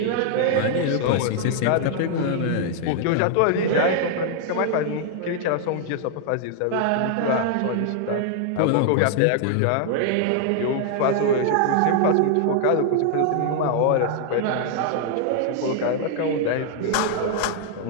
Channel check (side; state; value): both; different; correlation 0.00